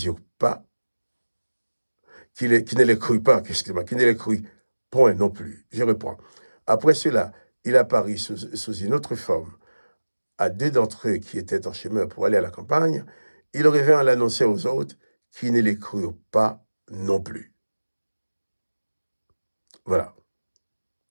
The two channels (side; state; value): both; inverted; correlation -1.00